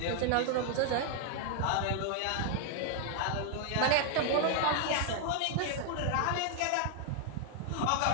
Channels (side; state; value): both; different; correlation 0.00